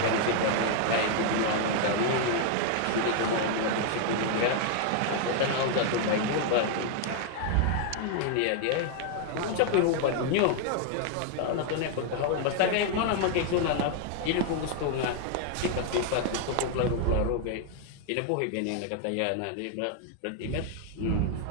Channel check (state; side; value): different; both; correlation 0.00